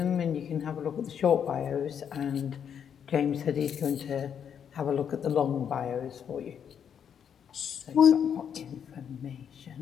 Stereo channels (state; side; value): quieter; right; 8.1 dB